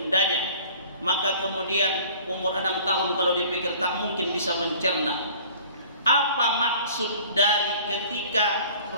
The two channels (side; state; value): both; inverted; correlation -0.49